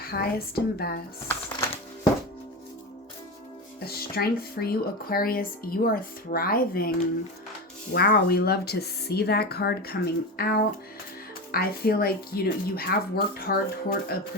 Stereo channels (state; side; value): normal; both; correlation 0.22